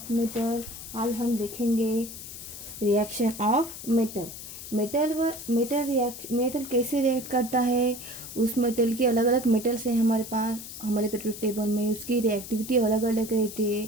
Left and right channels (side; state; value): left; noise; hiss, 12 dB below the sound